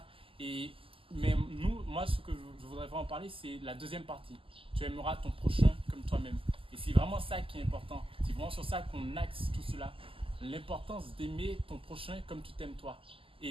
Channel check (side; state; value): left; late; 0.26 ms